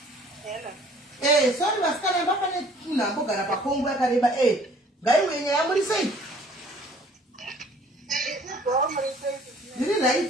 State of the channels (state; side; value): normal; both; correlation 0.55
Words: Sorry, masikana mbafane tuna mbogara pakongo yakareba ngai wenye yamuri sei. Ndiri